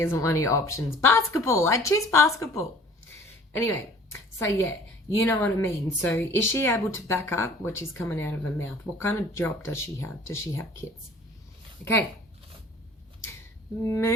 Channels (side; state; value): both; normal; correlation 0.50